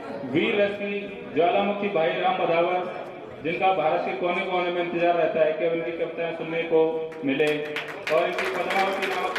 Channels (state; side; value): identical; both; correlation 1.00